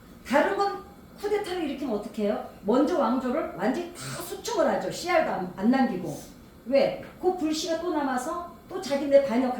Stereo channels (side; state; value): both; identical; correlation 1.00